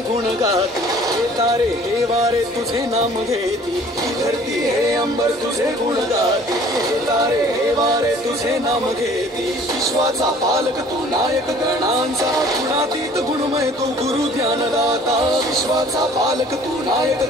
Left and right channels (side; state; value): both; normal; correlation 0.52